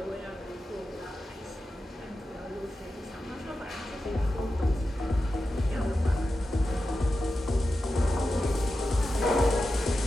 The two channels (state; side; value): normal; both; correlation 0.91